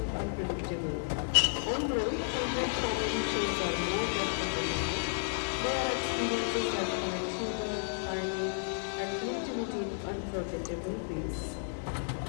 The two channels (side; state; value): right; silent; digital silence